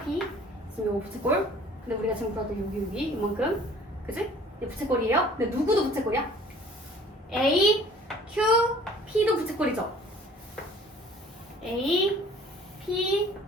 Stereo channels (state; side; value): normal; both; correlation 0.52